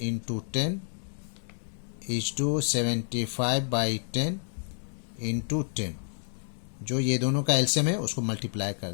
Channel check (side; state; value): right; silent; digital silence